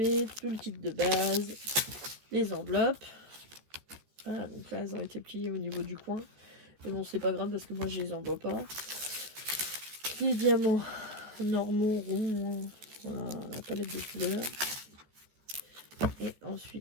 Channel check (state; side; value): late; left; 14 ms